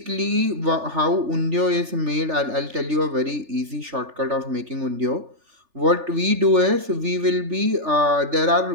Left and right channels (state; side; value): late; left; 3.4 ms